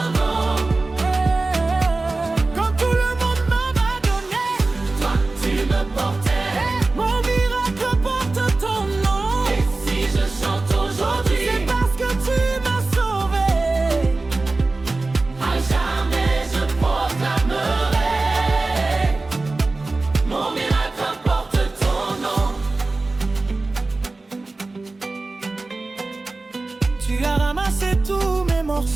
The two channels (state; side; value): quieter; left; 3.3 dB